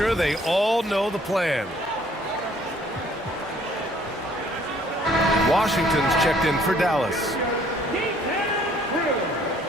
they all know the plan. Washington's checked in for Dallas.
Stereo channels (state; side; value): normal; both; correlation 0.60